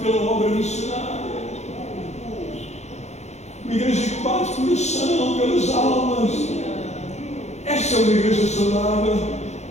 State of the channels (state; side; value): late; right; 0.32 ms